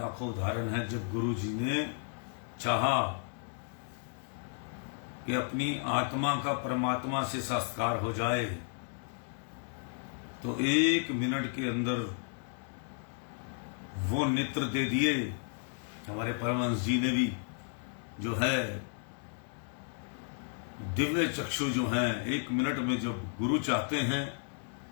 उदाहरण हैं, जब गुरु जी ने चाहा कि अपनी आत्मा का परमात्मा से साक्षात्कार हो जाए तो 1 मिनट के अंदर वो नेत्र दे दिए हमारे परमहंस जी ने भी जो है दिव्य चक्षु जो हैं 1 मिनट में जब गुरु चाहते हैं,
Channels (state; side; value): silent; right; 55 dB below the other